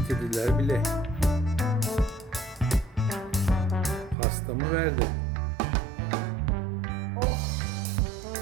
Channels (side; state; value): left; drops out; at 4.2 s